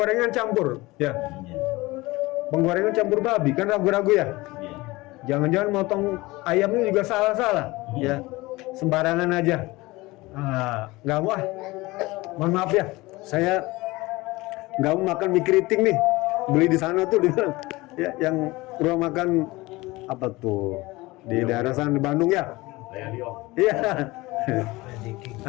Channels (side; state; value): right; quieter; 21.1 dB